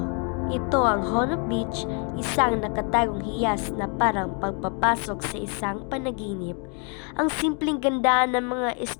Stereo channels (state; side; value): quieter; right; 37.9 dB